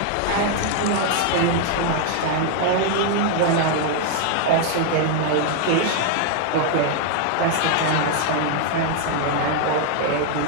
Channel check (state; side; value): different; both; correlation 0.00